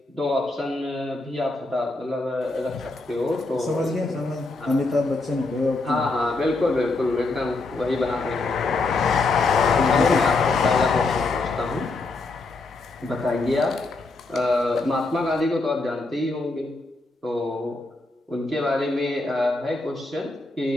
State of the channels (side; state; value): right; quieter; 3.3 dB